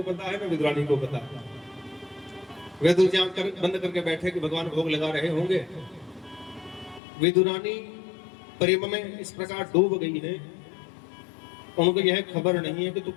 पता है, ना विद्वानी को पता है। विदुर जी आंख बंद करके बैठे कि भगवान भोग लगा रहे होंगे। विदुरानी प्रेम में इस प्रकार डूब गई है, उनको यह खबर नहीं है कि तू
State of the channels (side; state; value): right; drops out; at 7.0 s